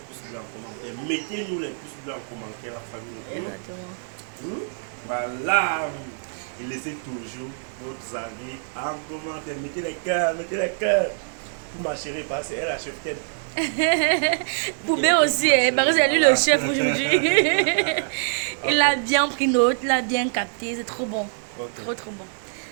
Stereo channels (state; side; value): silent; left; digital silence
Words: bleus en commentaire. Mettez-nous les pouces bleus en commentaire, la famille. Exactement. Voilà. Et laissez toujours vos avis en commentaire. Mettez les cœurs, mettez les cœurs. Pour ma chérie, parce qu'elle a chef tête. Poubé aussi, parce que c'est lui le chef aujourd'hui. Il a bien pris note, il a bien capté, c'est trop bon. Ok. Trop bon.